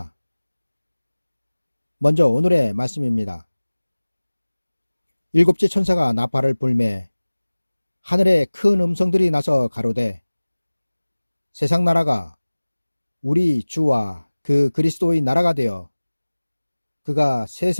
먼저 오늘의 말씀입니다. 일곱째 천사가 나팔을 불매 하늘에 큰 음성들이 나서 가로되 세상 나라가 우리 주와 그 그리스도의 나라가 되어 그가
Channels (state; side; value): inverted; both; correlation -1.00